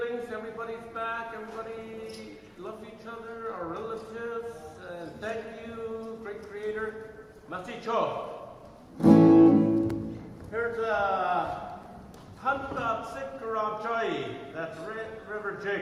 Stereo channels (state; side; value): identical; both; correlation 1.00